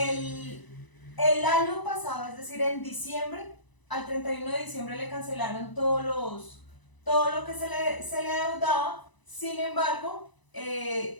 año pasado, es decir, en diciembre, al 31 de diciembre le cancelaron todo lo que se le adeudaba. Sin embargo,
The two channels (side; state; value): right; late; 1.0 ms